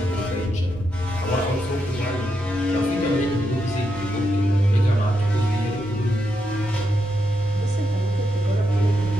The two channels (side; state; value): both; normal; correlation 0.83